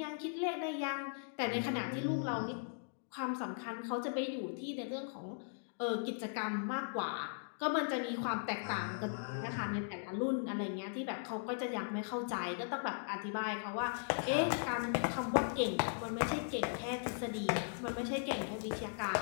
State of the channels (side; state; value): right; silent; digital silence